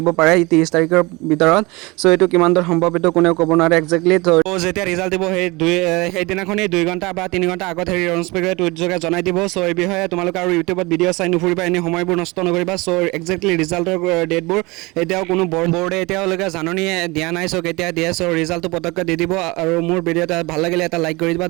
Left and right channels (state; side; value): quieter; left; 24.1 dB